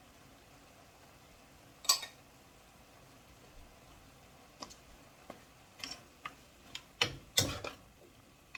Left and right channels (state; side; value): identical; both; correlation 1.00